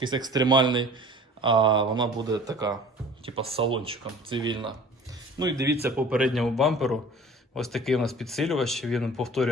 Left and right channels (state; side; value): normal; both; correlation 0.45